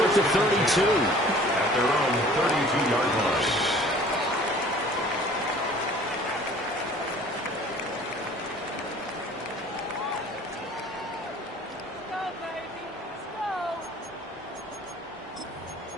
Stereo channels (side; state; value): both; normal; correlation 0.50